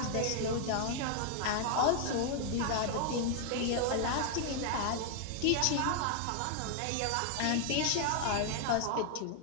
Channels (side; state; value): both; different; correlation 0.00